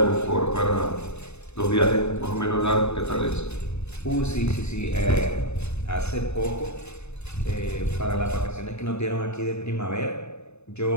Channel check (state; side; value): late; right; 0.81 ms